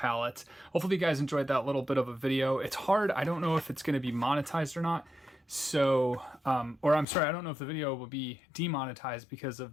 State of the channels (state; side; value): drops out; right; at 7.1 s